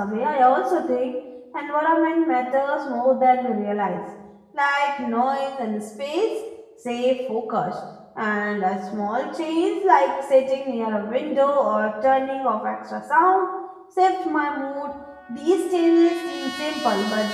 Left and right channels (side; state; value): both; identical; correlation 1.00